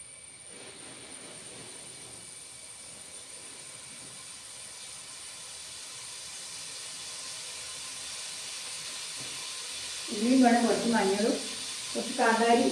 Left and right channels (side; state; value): both; identical; correlation 1.00